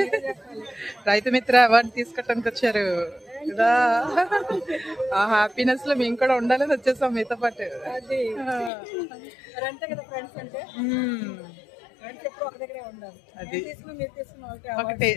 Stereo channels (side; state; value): right; drops out; at 8.7 s